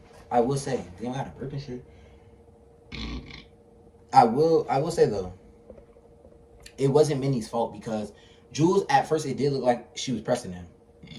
I will say, they don't have to burp and shit. I will say though, it wasn't Minnie's fault, because Jules, at first, it did look like she was pressing him.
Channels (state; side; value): identical; both; correlation 1.00